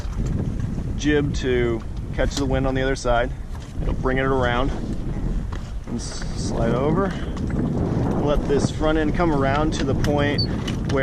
jib to catch the wind on the other side. It'll bring it around and slide over. Let this front end come around to the point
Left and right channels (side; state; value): both; identical; correlation 1.00